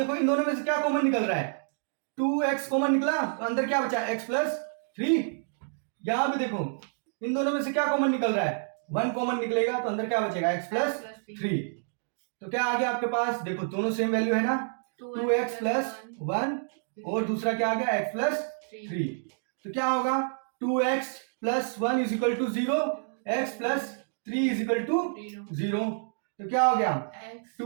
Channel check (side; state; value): left; silent; digital silence